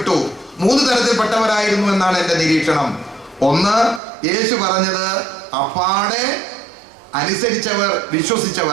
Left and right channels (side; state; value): left; drops out; at 4.0 s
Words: തരത്തിൽപ്പെട്ടവരായിരുന്നു എന്നാണ് എൻ്റെ നിരീക്ഷണം. ഒന്ന്, യേശു പറഞ്ഞത് അപ്പാടെ അനുസരിച്ചവർ,